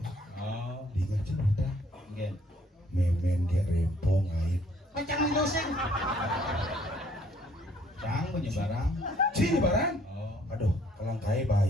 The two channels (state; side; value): normal; both; correlation 0.63